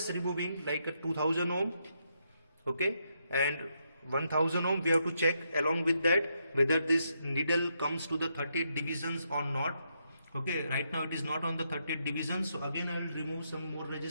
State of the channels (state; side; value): inverted; both; correlation -0.80